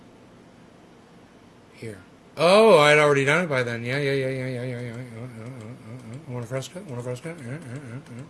Here. Oh, I'd already done it by then. Yeah. Want a fresco?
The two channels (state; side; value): identical; both; correlation 1.00